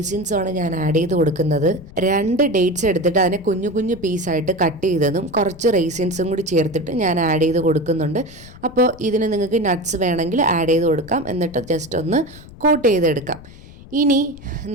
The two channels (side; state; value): left; noise; rumble, 19 dB below the sound